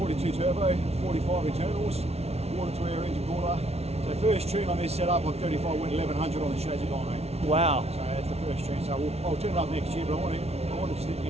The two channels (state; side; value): late; left; 0.31 ms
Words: turbo, 45 internals, water to air engine cooler. So first tune on this setup on 35 went 1100 on the chassis dyno. Wow. So that's the first tune. So I'll turn it up next year, but I want to just